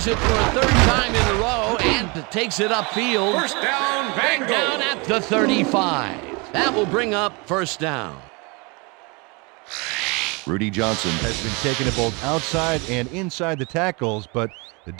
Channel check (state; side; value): quieter; left; 29.2 dB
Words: it for a third time in a row and takes it upfield. First down, Back Bengals. down at the 35. That will bring up first down. Rudy Johnson has been taking it both outside and inside the tackles, but the